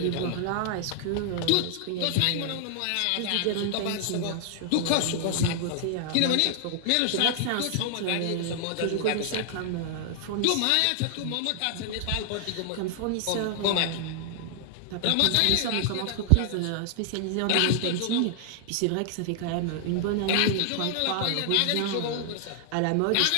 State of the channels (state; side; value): different; both; correlation 0.00